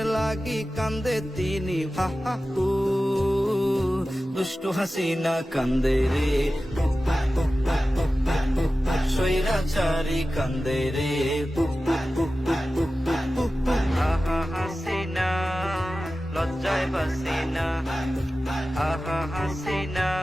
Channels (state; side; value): normal; both; correlation 0.95